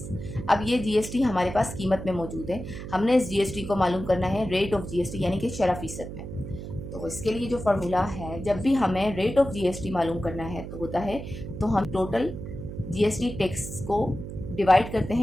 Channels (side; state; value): right; noise; hum, 9 dB below the sound